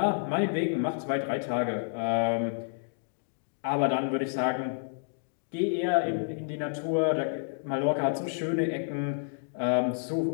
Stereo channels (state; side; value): silent; right; digital silence